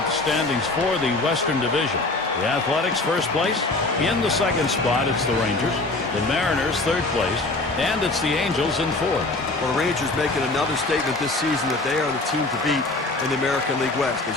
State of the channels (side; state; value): right; quieter; 3.1 dB